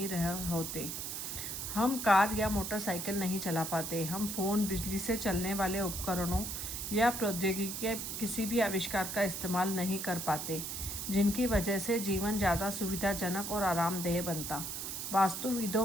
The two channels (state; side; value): noise; right; hiss, 5 dB below the sound